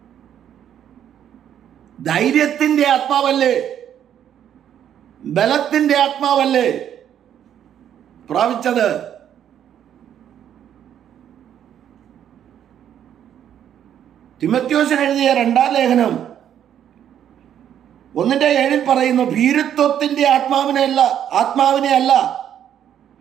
ധൈര്യത്തിൻ്റെ ആത്മാവല്ലേ, ബലത്തിൻ്റെ ആത്മാവല്ലേ പ്രാപിച്ചത്. തിമോഥെയോസിന് എഴുതിയ 2-ാം ലേഖനം 1:7 പറയുന്നു, ഭീരുത്വത്തിൻ്റെ ആത്മാവിനെ അല്ല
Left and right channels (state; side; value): quieter; left; 9.9 dB